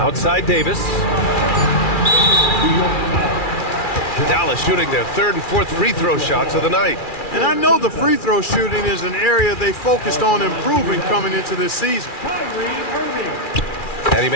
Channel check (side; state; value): right; late; 2.4 ms